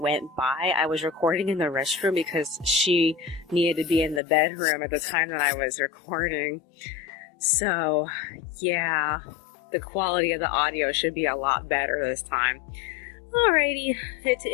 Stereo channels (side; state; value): right; drops out; at 4.2 s